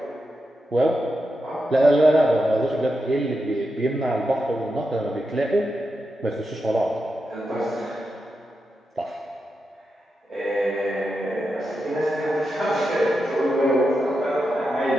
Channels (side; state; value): both; normal; correlation 0.87